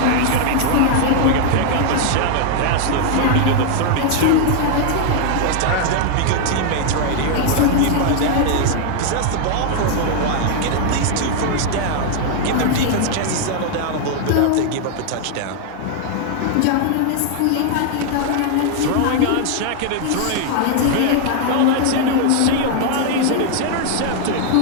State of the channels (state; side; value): different; both; correlation 0.00